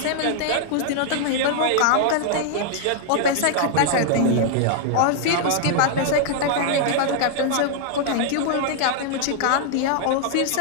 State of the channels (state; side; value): different; both; correlation -0.01